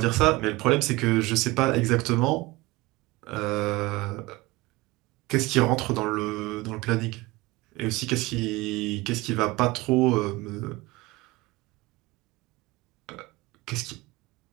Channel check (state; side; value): quieter; left; 21.3 dB